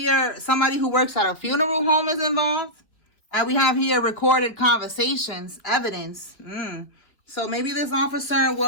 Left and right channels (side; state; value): right; late; 2.9 ms